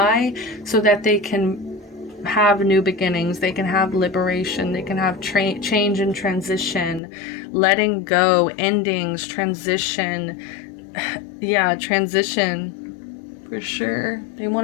so that they can have new beginnings. They can have liberation. They can have change and transition, letting go, endings, transition. Yeah, transition for sure. They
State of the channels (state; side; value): drops out; right; at 7.0 s